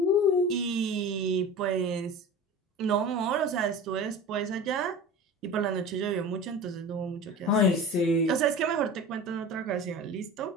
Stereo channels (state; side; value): normal; both; correlation 0.34